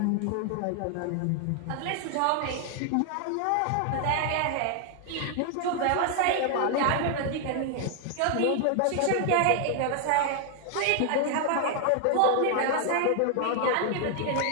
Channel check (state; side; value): different; both; correlation 0.00